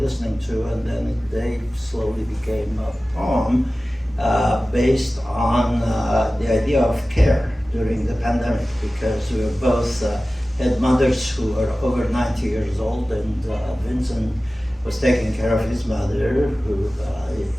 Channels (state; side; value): normal; both; correlation 0.96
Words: to, and then they slowly became a poem based on the idea of care during the pandemic, because we were both had mothers who were over 90 years old, and Vincent was taking care of his mother, who